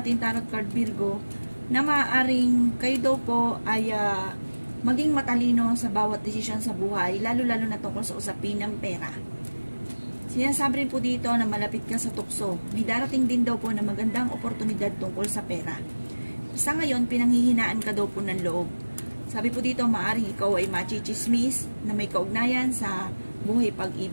tarot card Virgo na maaaring kayo daw po ay maging matalino sa bawat desisyon sa buhay, lalo-lalo na tungkol sa usapin ng pera. Sinasabi rin po dito na malapit ka sa tukso. May darating din daw po na magandang oportunidad tungkol sa pera. Sa ngayon, pinanghihinaan ka daw po ng loob. Sabi po dito, maaaring ikaw ay machichismis na may kaugnayan sa buhay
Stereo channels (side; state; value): both; inverted; correlation -1.00